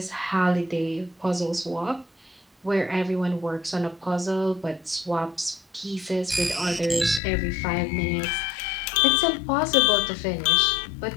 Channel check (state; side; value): drops out; right; at 7.2 s